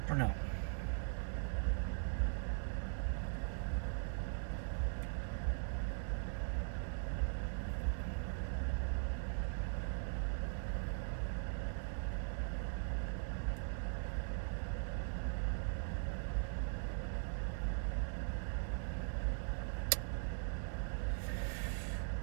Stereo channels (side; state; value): left; silent; digital silence